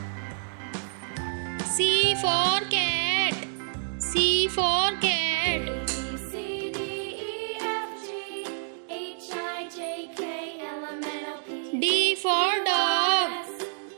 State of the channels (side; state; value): left; silent; digital silence